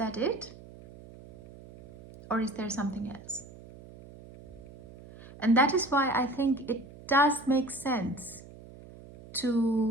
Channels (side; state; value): right; noise; hum, 19 dB below the sound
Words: it? Or is there something else? And that is why I think it does make sense